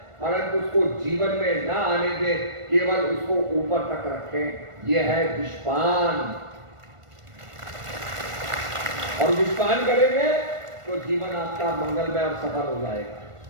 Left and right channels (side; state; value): left; late; 1.5 ms